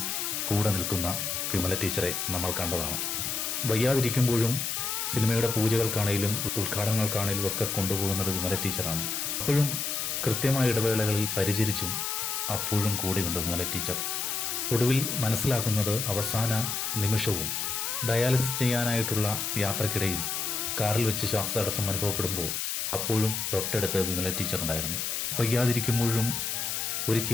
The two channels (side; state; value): left; noise; hiss, 1 dB below the sound